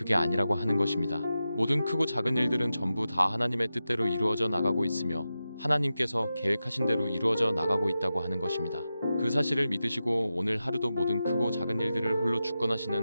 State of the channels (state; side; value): inverted; both; correlation -0.92